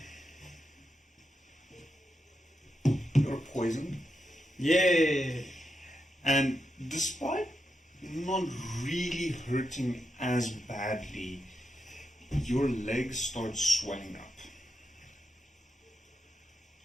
you're poisoned, Yay! and despite not really hurting as badly, your legs start swelling up.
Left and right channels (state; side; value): normal; both; correlation 0.85